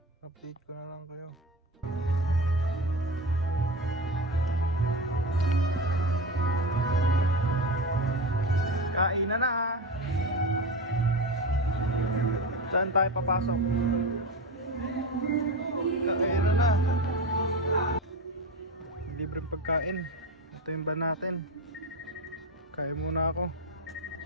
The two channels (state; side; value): normal; both; correlation 0.24